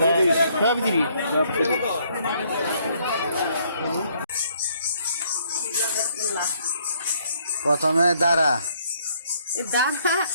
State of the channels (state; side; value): inverted; both; correlation -0.67